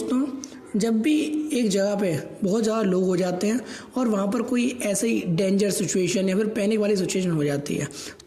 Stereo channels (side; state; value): both; identical; correlation 1.00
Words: जब भी एक जगह पे बहुत ज़्यादा लोग हो जाते हैं और वहाँ पर कोई ऐसे ही डेंजर सिचुएशन या फिर पैनिक वाली सिचुएशन हो जाती है,